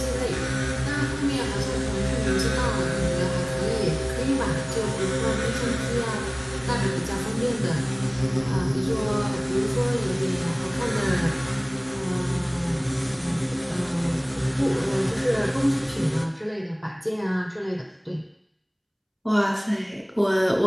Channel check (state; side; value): identical; both; correlation 1.00